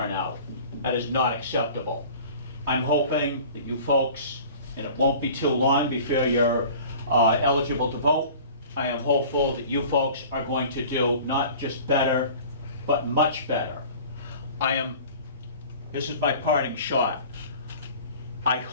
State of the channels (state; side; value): inverted; both; correlation -0.43